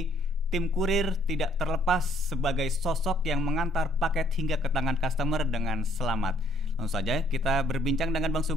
tim kurir tidak terlepas sebagai sosok yang mengantar paket hingga ke tangan customer dengan selamat. Langsung saja kita berbincang dengan Bang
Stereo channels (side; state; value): both; normal; correlation 0.65